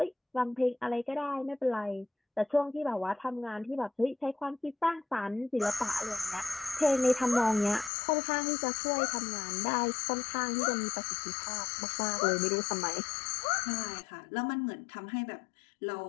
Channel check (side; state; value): right; drops out; at 7.9 s